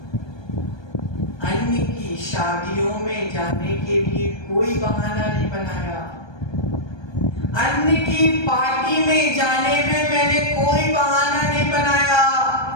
अन्य की शादियों में जाने के लिए कोई बहाना नहीं बनाया। अन्य की पार्टी में जाने में मैंने कोई बहाना नहीं बनाया।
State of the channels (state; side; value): late; right; 1.2 ms